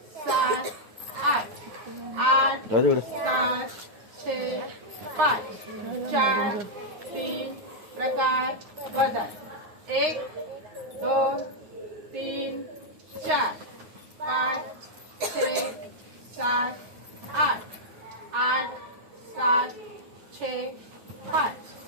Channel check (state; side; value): late; left; 9.7 ms